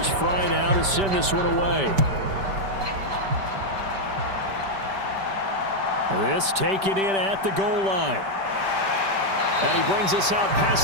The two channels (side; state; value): left; late; 5.1 ms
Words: Fry now to send this one away. This taken in at the goal line. And he brings us out